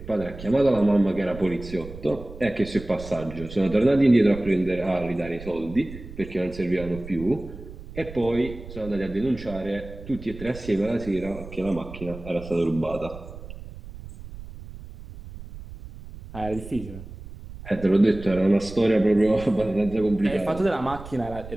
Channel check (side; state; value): right; noise; rumble, 14 dB below the sound